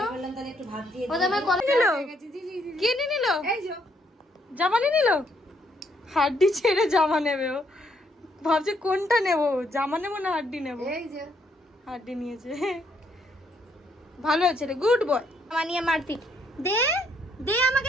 বললাম তাহলে একটু ভাত দিয়ে ও তো আমার কলা নিল। কি নিয়ে নিল? এই যে জামা নিয়ে নিল। হাড্ডি ছেড়ে জামা নেবে ও। ভাবছে কোনটা নেবো, জামা নেবো না হাড্ডি নেবো। এই যে হাড্ডি নিয়েছে। ভালো আছে রে, গুড বয়। জামা নিয়ে মারতি দে, দে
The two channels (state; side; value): normal; both; correlation 0.71